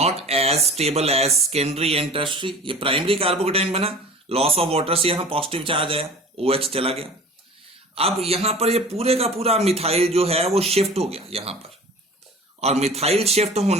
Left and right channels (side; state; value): both; normal; correlation 0.40